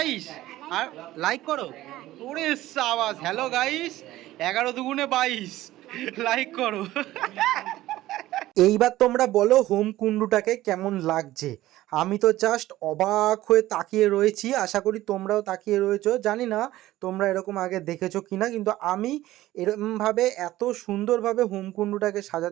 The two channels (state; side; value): quieter; left; 15.7 dB